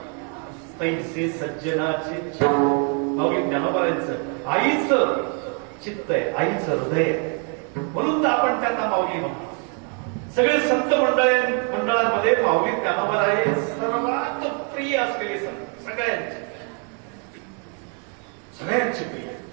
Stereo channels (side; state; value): left; quieter; 39.6 dB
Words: तैसे सज्जनाचे. माऊली ज्ञानोबरायांचं आईचं चित्त आहे, आईचं हृदय आहे, म्हणून तर आपण त्यांना माऊली म्हणतो. सगळे संत मंडळांमध्ये माऊली ज्ञानोबराय सर्वात प्रिय असलेले संत, सगळ्यांचे प्रिय.